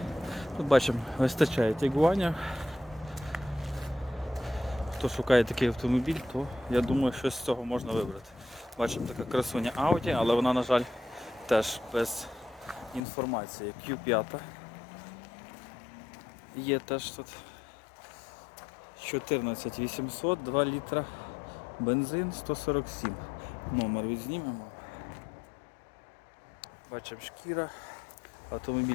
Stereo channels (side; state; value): right; drops out; at 13.0 s